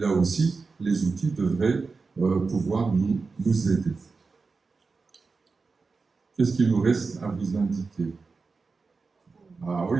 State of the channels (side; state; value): left; quieter; 4.4 dB